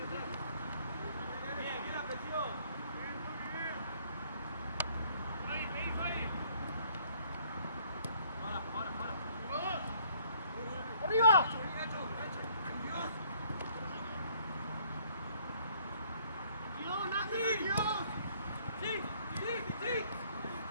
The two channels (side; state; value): both; inverted; correlation -0.61